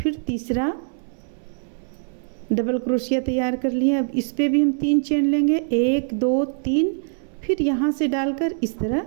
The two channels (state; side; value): silent; left; 63 dB below the other